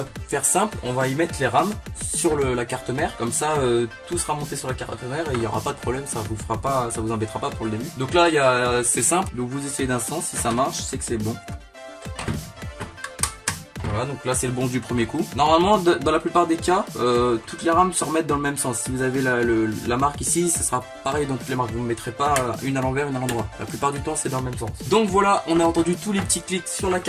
faire simple, on va y mettre les RAM sur la carte mère, comme ça tout sera monté sur la carte mère et il n'y aura pas de problème, ça vous fera pas, ça vous embêtera pas pour le début. Donc là c'est simple, donc vous essayez d'un sens, si ça marche c'est que c'est bon. Voilà, donc là c'est le bon du premier coup. Normalement dans la plupart des cas toutes les rames se remettent dans le même sens. Si vous avez la marque ici, ça sera pareil dans toutes les marques, vous ne mettrez pas une à l'envers, une à l'endroit. La plupart du temps c'est dans le même sens. Donc voilà, on a entendu tous les petits clics sur la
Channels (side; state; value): both; identical; correlation 1.00